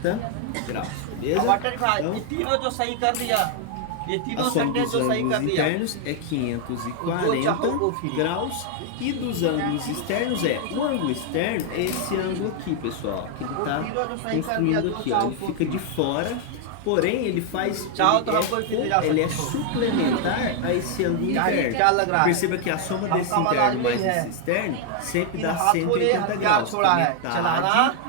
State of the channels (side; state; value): both; different; correlation 0.00